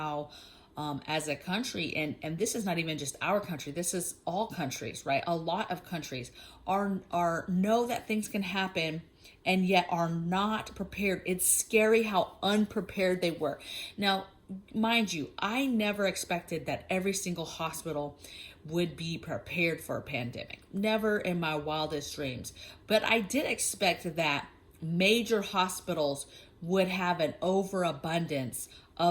as a country, and this is not even just our country, this is all countries, right? A lot of countries are know that things can happen and yet are not prepared. It's scary how unprepared they were. Now, mind you, I never expected that every single hospital would be prepared for a pandemic. Never in my wildest dreams. But I did expect that major hospitals would have an overabundance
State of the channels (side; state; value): both; identical; correlation 1.00